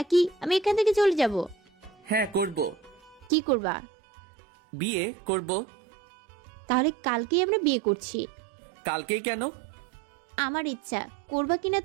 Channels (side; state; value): left; drops out; at 3.3 s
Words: আমি এখান থেকে চলে যাব? হ্যাঁ করব। কি করবা? বিয়ে করব। তাহলে কালকেই আমরা বিয়ে করছি। কালকেই কেন? আমার ইচ্ছা, করবা কিনা